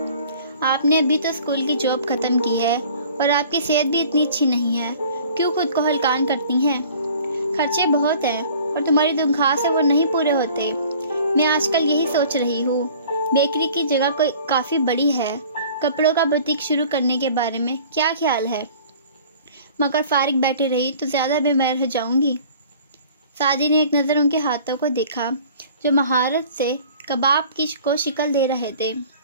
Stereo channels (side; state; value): both; inverted; correlation -0.49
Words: आपने अभी तो स्कूल की जॉब ख़त्म की है और आपकी सेहत भी इतनी अच्छी नहीं है, क्यों खुद को हलकान करती हैं? खर्चे बहुत हैं और तुम्हारी तनख्वाह से वो नहीं पूरे होते। मैं आजकल यही सोच रही हूँ, बेकरी की जगह कोई काफ़ी बड़ी है, कपड़ों का बुटीक शुरू करने के बारे में क्या ख्याल है? मगर फारिग बैठी रही तो ज़्यादा बीमार हो जाऊंगी। सादी ने एक नज़र उनके हाथों को देखा जो महारत से कबाब को शिकल दे रहे थे।